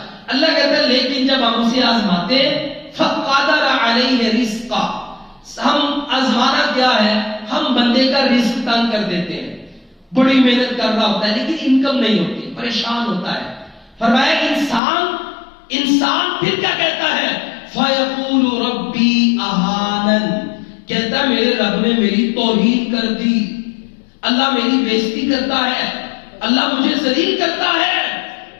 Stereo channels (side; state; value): right; drops out; at 14.8 s